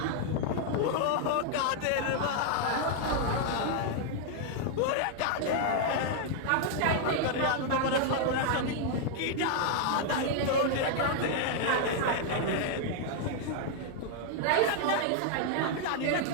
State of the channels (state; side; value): different; both; correlation 0.00